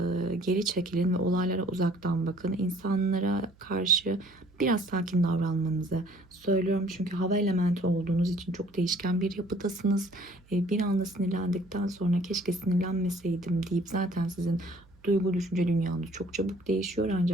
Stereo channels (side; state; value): right; noise; hum, 28 dB below the sound